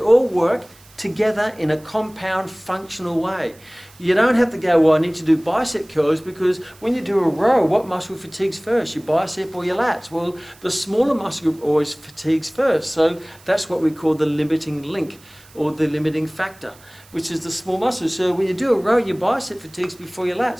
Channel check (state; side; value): noise; right; hiss, 26 dB below the sound